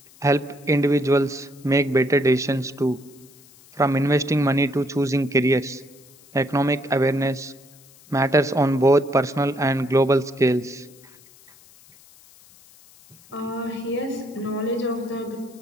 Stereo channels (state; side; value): noise; left; hiss, 26 dB below the sound